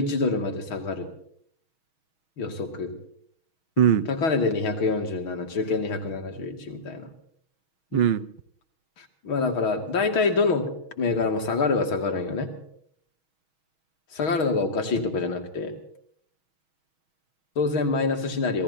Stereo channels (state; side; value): late; right; 6.3 ms